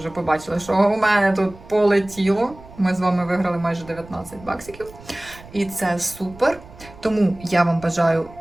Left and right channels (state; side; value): noise; right; rumble, 20 dB below the sound